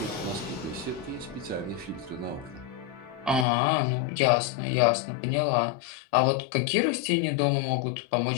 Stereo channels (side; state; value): right; drops out; at 3.5 s